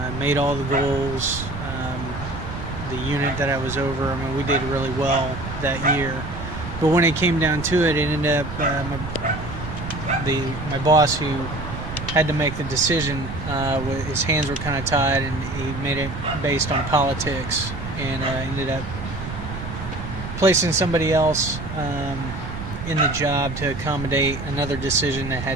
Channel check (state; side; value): noise; right; rumble, 8 dB below the sound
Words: Made all the goals. The unit that I was over, we did really well that year. But when it came down to it, it ended up my boss, who had to make the decision, his hands were kind of tied, and he made it based on politics, and ended up placing somebody else in the job to accommodate another decision that